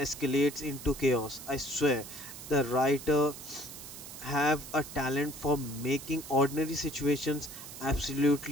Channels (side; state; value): right; noise; hiss, 13 dB below the sound